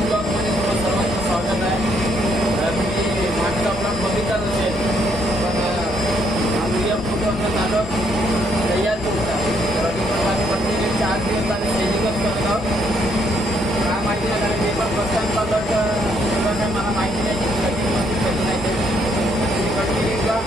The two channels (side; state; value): both; normal; correlation 0.71